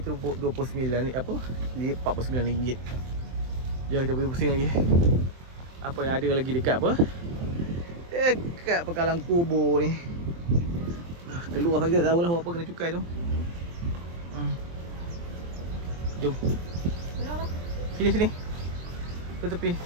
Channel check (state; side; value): late; left; 23 ms